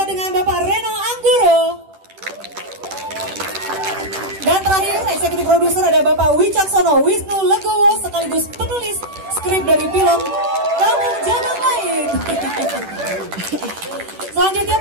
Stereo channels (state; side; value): late; left; 10 ms